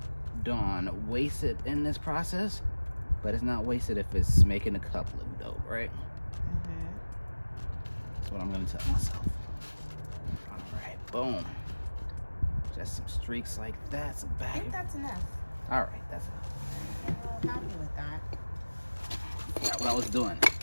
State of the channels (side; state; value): both; inverted; correlation -1.00